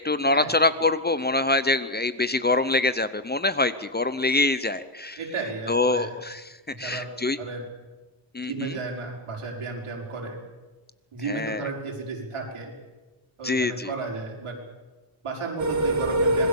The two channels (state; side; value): normal; both; correlation -0.04